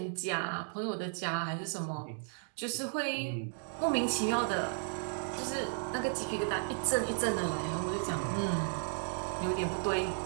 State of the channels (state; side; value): silent; left; digital silence